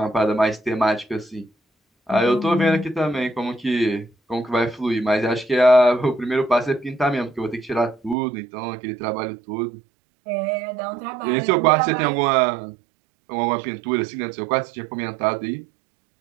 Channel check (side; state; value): left; drops out; at 8.2 s